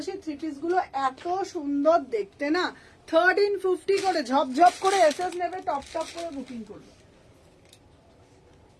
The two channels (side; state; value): both; identical; correlation 1.00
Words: থ্রি পিস গুলো এত সুন্দর দেখতে না। 1350 করে ঝপঝপ করে এসএস নেবে, টপ টপ করে বুকিং করবে।